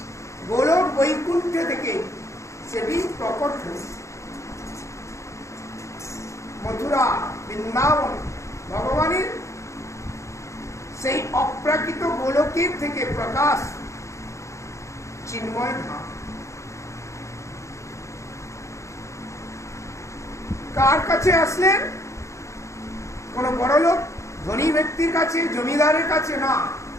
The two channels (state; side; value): late; right; 0.14 ms